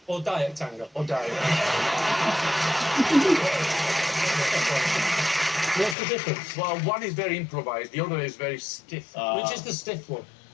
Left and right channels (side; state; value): right; drops out; at 6.0 s